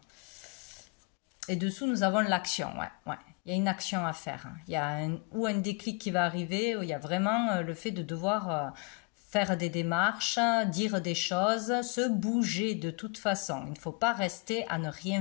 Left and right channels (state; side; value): quieter; right; 30.5 dB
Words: Et dessous, nous avons l'action, ouais. Il y a une action à faire. Il y a un déclic qui va arriver, où il y a vraiment le fait de devoir faire des démarches, dire des choses, se bouger de toute façon. Il ne faut pas rester à ne